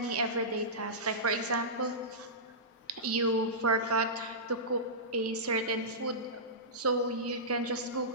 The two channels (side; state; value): both; normal; correlation -0.17